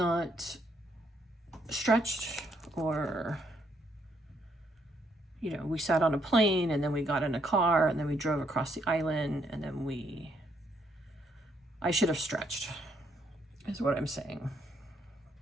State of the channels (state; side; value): normal; both; correlation 0.72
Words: stretched, or, you know, we sat on a plane and then we got in a car and then we drove across the island, and then I should have stretched, is what I'm saying.